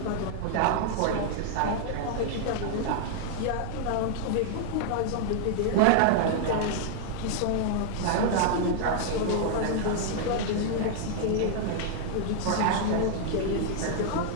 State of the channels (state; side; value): different; both; correlation -0.01